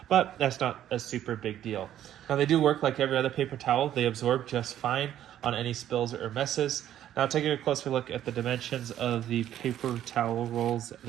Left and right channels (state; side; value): quieter; left; 11.5 dB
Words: but that's not a super big deal. Now, they do work like every other paper towel. They absorb just fine on any spills or messes. Now, taking a closer look at the dimensions of the paper towel rolls